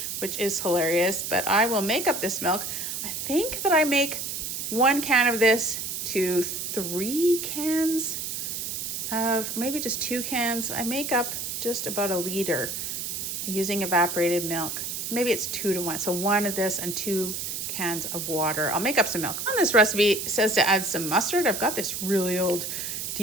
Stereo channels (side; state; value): right; noise; hiss, 4 dB below the sound